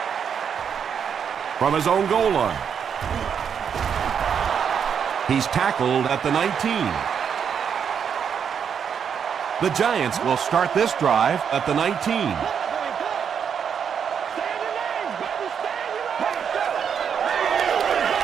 From his own goal line. He's tackled at the 19. The Giants will start this drive at the 19.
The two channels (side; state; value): left; quieter; 7.4 dB